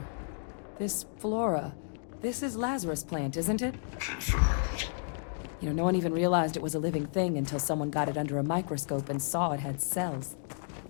this flora, this is Lazarus plant, isn't it? Confirmed. You know, no one even realized it was a living thing until someone got it under a microscope and saw it had cells.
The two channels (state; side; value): silent; right; digital silence